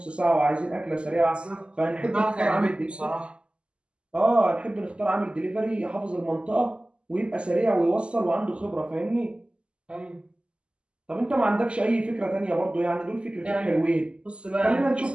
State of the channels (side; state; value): left; late; 0.052 ms